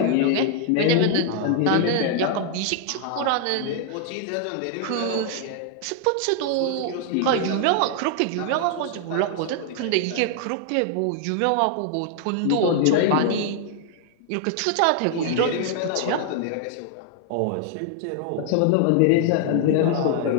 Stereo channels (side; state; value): both; different; correlation 0.00